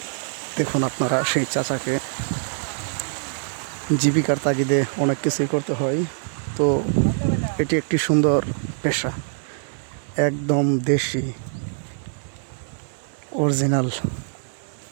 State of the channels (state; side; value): silent; left; 61 dB below the other